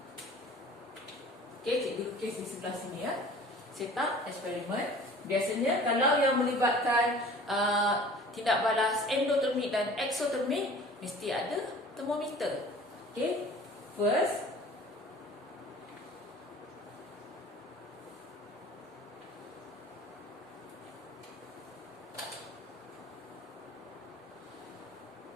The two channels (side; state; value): both; normal; correlation 0.46